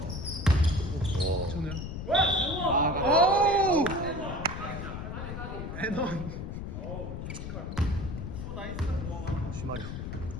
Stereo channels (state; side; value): noise; left; rumble, 7 dB below the sound